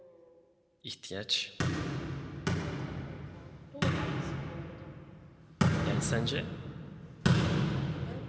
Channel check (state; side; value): identical; both; correlation 1.00